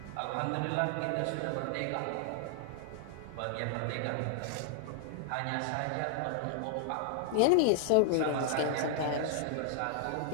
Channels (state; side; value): different; both; correlation 0.00